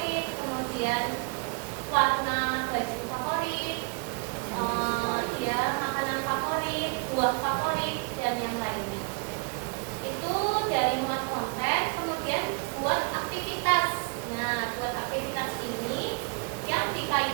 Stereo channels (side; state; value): left; quieter; 34.4 dB